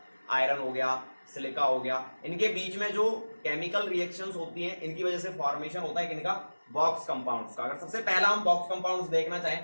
आयरन हो गया, सिलिका हो गया, इनके बीच में जो केमिकल रिएक्शंस होती हैं, इनकी वजह से फॉर्मेशन होता है किनका? बॉक्स कंपाउंड्स का। अगर सबसे पहला हम बॉक्स कंपाउंड्स देखना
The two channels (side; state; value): both; inverted; correlation -1.00